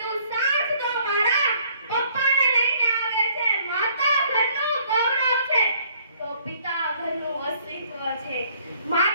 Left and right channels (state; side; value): inverted; both; correlation -0.61